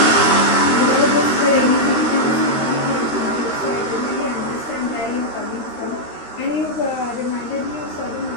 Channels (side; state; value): right; late; 13 ms